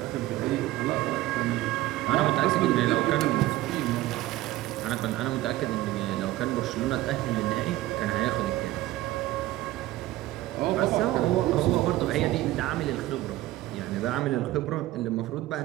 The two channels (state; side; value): quieter; left; 16.4 dB